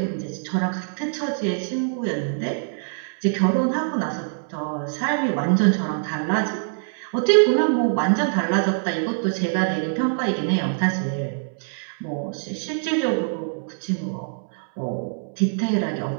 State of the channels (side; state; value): left; silent; 63 dB below the other